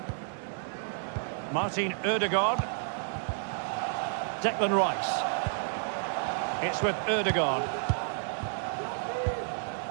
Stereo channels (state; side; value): silent; left; digital silence